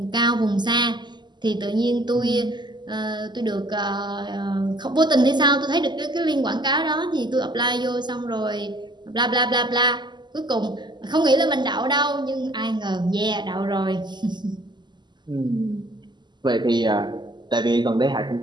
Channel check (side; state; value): left; late; 0.21 ms